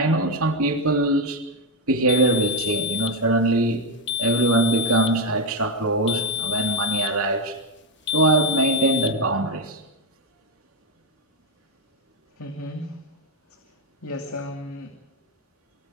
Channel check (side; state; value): both; normal; correlation 0.05